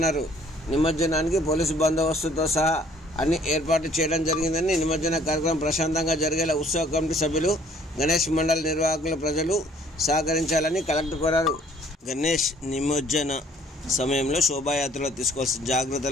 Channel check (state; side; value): normal; both; correlation 0.59